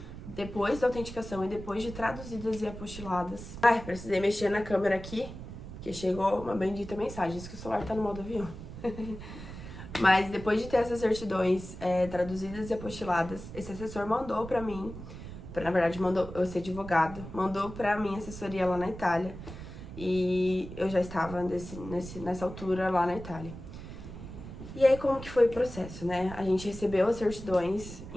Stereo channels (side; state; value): right; noise; rumble, 12 dB below the sound